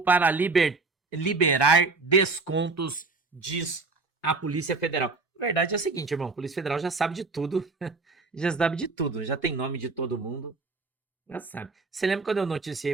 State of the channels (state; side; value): quieter; left; 3.9 dB